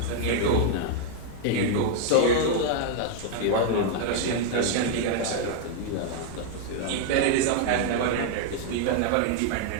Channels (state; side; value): different; both; correlation -0.01